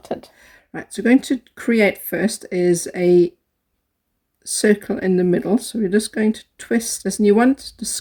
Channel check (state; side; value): identical; both; correlation 1.00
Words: Right, so going to create first is a circle in the middle. So we're just going to twist this, and you want the